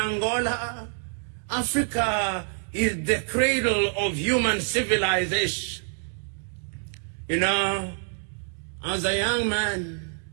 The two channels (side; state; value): left; silent; 60 dB below the other